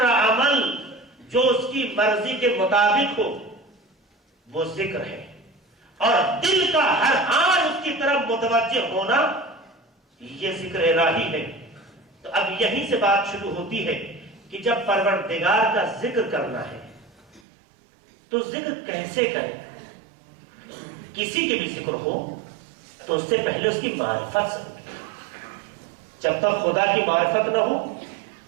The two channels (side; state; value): left; drops out; at 17.4 s